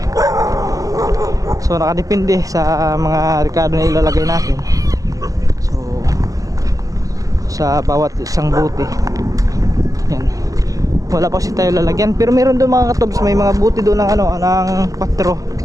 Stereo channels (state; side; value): late; left; 0.17 ms